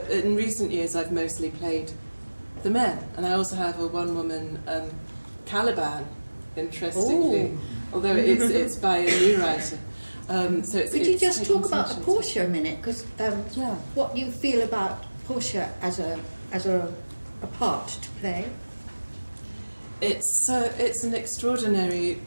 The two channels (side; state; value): both; inverted; correlation -1.00